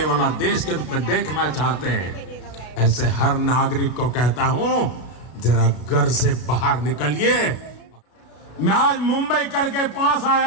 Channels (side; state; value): right; late; 32 ms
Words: वाला देश के रूप में देखना चाहते हैं, ऐसे हर नागरिक को कहता हूं, जरा घर से बाहर निकलिए। मैं आज मुंबई करके पास